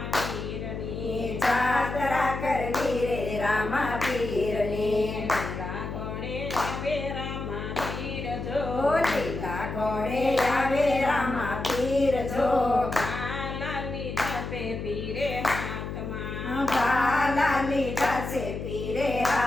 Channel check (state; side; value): noise; left; hum, 6 dB below the sound